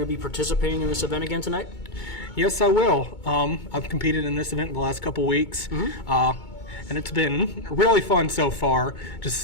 to be participating in this event again tonight? Yes, I will. I've competed in this event the last couple weeks, and it's been really fun so far.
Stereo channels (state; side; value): late; right; 2.2 ms